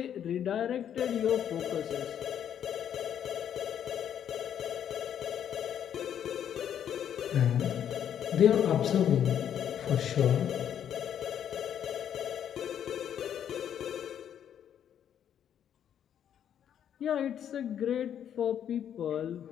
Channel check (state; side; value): quieter; right; 9.4 dB